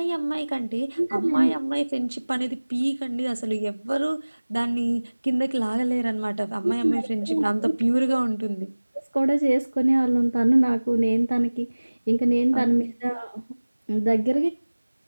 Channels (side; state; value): both; inverted; correlation -1.00